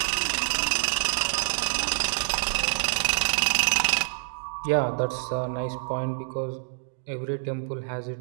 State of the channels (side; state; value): left; silent; digital silence